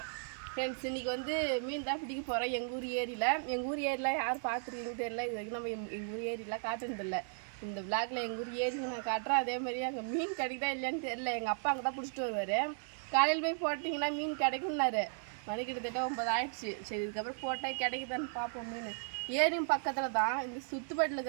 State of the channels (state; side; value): silent; left; 54 dB below the other